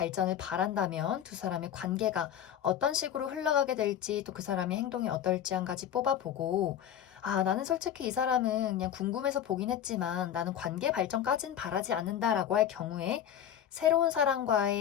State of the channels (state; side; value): quieter; right; 9.9 dB